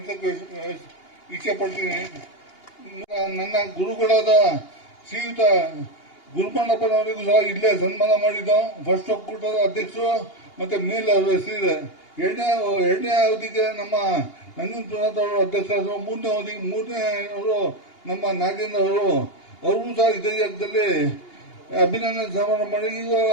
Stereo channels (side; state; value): right; late; 2.8 ms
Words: ಇಚ್ಛೆಪಡ್ತೀನಿ. ನನ್ನ ಗುರುಗಳಾದ ಶ್ರೀಯುತ ಗುರುಮಣ್ಣಪ್ಪನವರಿಗೂ ಸಹ ಇಲ್ಲೇ ಸನ್ಮಾನ ಮಾಡಿದ್ದು. ಫಸ್ಟ್ ಒಕ್ಕೂಟದ ಅಧ್ಯಕ್ಷರು ಮತ್ತೆ ಮೇಲೆ ಅವರ ಹೆಸರಿದೆ. ಎರಡನೇ ಅವಧಿಗೆ ನಮ್ಮ ನಂಜುಂಡಪ್ಪನವರು ಅಧ್ಯಕ್ಷರಾದರು. ಮೂರನೇ ಅವರು ನಮ್ಮ ನಾಗೇಂದ್ರ ಅವರು ಸಹ ಇದೇ ಜಾಗದಲ್ಲಿ ಅಭಿನಂದನೆ ಸಮಾರಂಭ ಮಾಡಿ